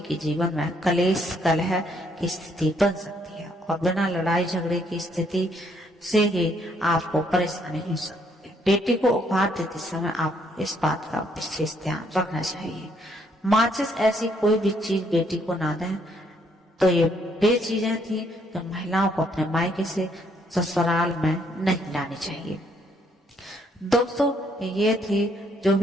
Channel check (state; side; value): normal; both; correlation 0.70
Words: जीवन में कलेश, कलह की स्थिति बन सकती है और बिना लड़ाई झगड़े की स्थिति से ही आपको परेशानी हो सकती है। बेटी को उपहार देते समय आपको इस बात का विशेष ध्यान रखना चाहिए। माचिस ऐसी कोई भी चीज बेटी को ना दें। तो ये वे चीजें थी जो महिलाओं को अपने मायके से ससुराल में नहीं लानी चाहिए। दोस्तों ये थी जो